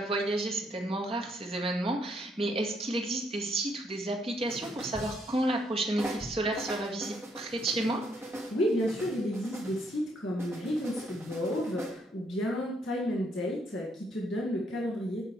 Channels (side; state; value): both; normal; correlation 0.72